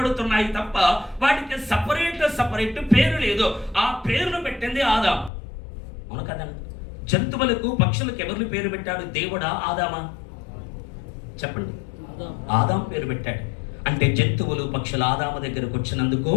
తప్ప వాటికి సపరేట్ పేరు లేదు. ఆ పేరును పెట్టింది ఆదాము. అవును కదా? జంతువులకు పక్షులకు ఎవరు పేరు పెట్టాడు? దేవుడా ఆదామా చెప్పండి? ఆదాము పేరు పెట్టాడు. అంటే జంతువులు పక్షులు ఆదాము దగ్గరకు వచ్చినందుకు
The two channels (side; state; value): right; drops out; at 5.3 s